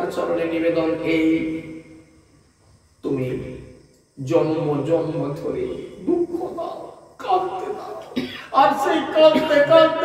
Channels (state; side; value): identical; both; correlation 1.00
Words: চরণে নিবেদন এই, তুমি জন্ম জন্ম ধরে দুঃখ দাও, কাঁদতে দাও, আর সেই কাঁদতে